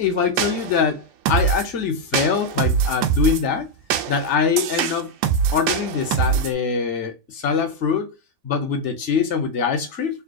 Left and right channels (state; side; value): late; left; 1.8 ms